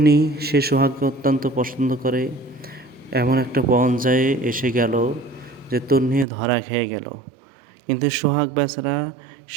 সে সোহাগকে অত্যন্ত পছন্দ করে। এমন একটা পর্যায়ে এসে গেল যে তন্নি ধরা খেয়ে গেল। কিন্তু সোহাগ বেচারা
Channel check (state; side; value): drops out; left; at 6.2 s